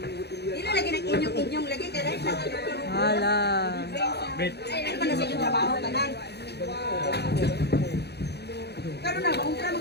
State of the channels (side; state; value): right; late; 0.48 ms